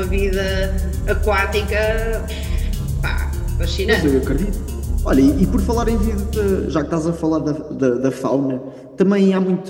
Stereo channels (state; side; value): identical; both; correlation 1.00